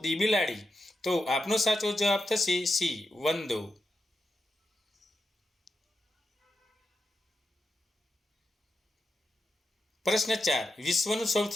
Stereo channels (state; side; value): normal; both; correlation 0.87